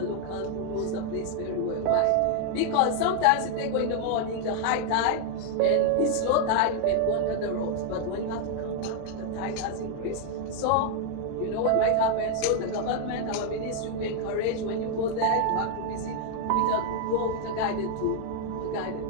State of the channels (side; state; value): both; different; correlation 0.00